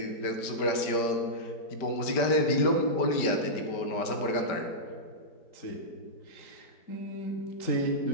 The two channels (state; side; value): late; right; 5.1 ms